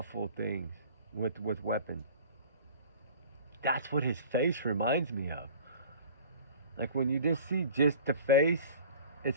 things with weapons. That's what his face reminds me of. Like when you just see just the face,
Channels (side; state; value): both; inverted; correlation -0.43